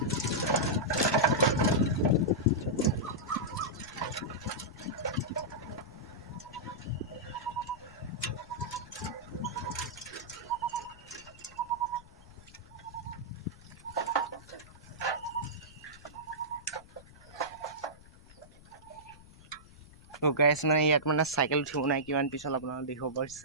তো গাইজ মানে ইয়াত মানে চাইকেল উঠিব নাই কিমান পিছত আপোনালোকে দেখিব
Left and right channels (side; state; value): left; noise; rumble, 21 dB below the sound